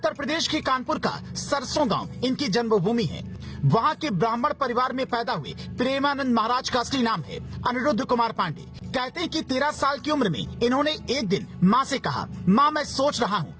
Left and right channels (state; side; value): identical; both; correlation 1.00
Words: प्रदेश के कानपुर का सरसों गांव इनकी जन्मभूमि है। वहाँ के ब्राह्मण परिवार में पैदा हुए प्रेमानंद महाराज का असली नाम है अनिरुद्ध कुमार पांडे। कहते हैं कि 13 साल की उम्र में इन्होंने एक दिन माँ से कहा, माँ मैं सोच रहा हूँ